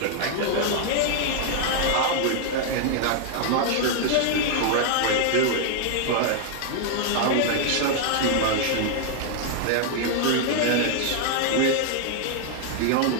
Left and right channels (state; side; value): different; both; correlation 0.00